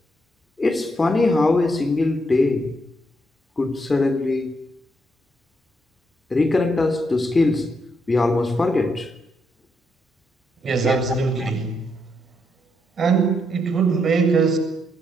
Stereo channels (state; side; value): normal; both; correlation 0.78